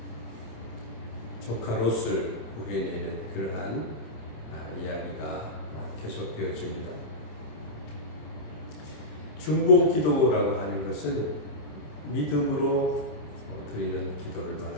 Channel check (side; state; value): right; late; 27 ms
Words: 조카 롯을 구해내는 그러한 이야기가 계속되어집니다. 중보 기도라고 하는 것은 믿음으로 드리는 기도를